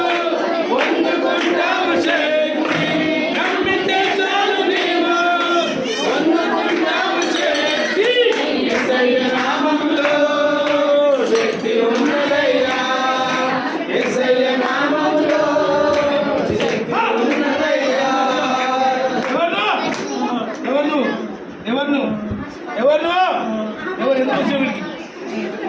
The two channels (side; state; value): both; identical; correlation 1.00